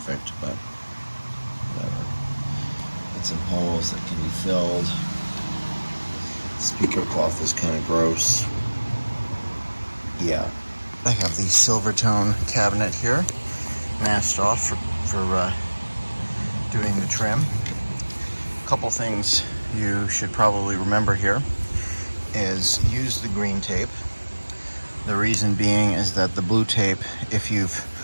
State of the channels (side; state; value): both; inverted; correlation -1.00